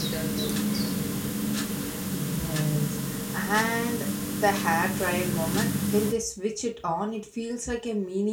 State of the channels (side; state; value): both; identical; correlation 1.00